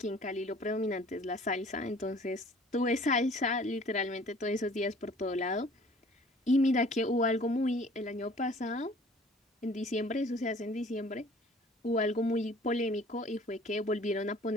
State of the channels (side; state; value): both; normal; correlation 0.51